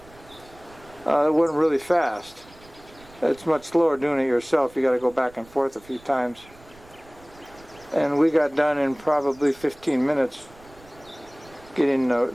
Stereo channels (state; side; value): noise; right; rumble, 24 dB below the sound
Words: it went really fast. It's much slower doing it yourself. You got to go back and forth a few times. And we got done in probably 15 minutes getting